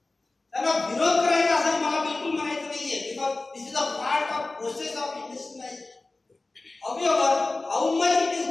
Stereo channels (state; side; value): quieter; right; 3.2 dB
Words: त्याला विरोध करायचा असं मला बिलकुल म्हणायचं नाहीये, because this is a part of process of industrialisation. However, how much it is